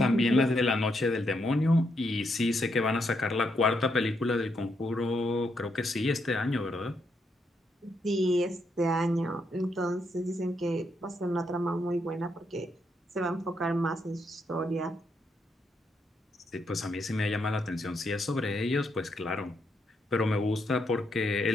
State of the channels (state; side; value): normal; both; correlation 0.78